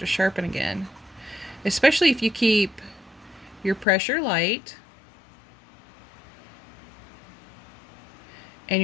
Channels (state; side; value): drops out; right; at 3.9 s